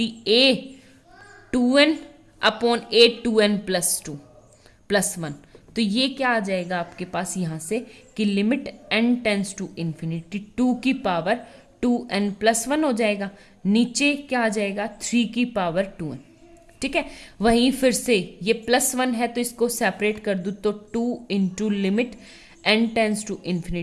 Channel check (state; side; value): identical; both; correlation 1.00